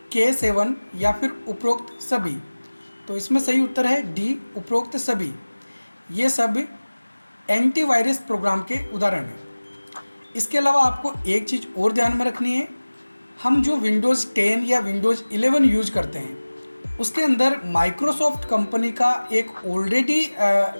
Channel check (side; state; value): both; inverted; correlation -1.00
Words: K7 या फिर उपरोक्त सभी? तो इसमें सही उत्तर है डी, उपरोक्त सभी। ये सब एंटीवायरस प्रोग्राम के उदाहरण हैं। इसके अलावा आपको एक चीज़ और ध्यान में रखनी है, हम जो विंडोज़ 10 या विंडोज़ 11 यूज करते हैं उसके अंदर माइक्रोसॉफ्ट कंपनी का एक ऑलरेडी